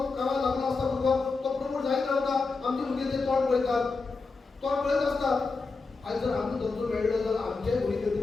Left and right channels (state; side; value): quieter; right; 4.1 dB